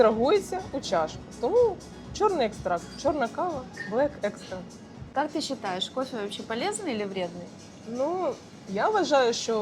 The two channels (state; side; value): identical; both; correlation 1.00